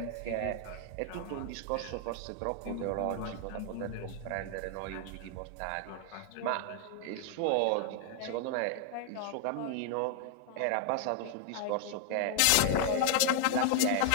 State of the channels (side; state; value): both; different; correlation 0.00